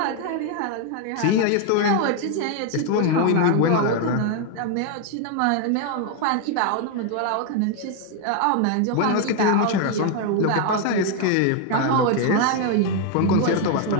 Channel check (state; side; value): different; both; correlation 0.00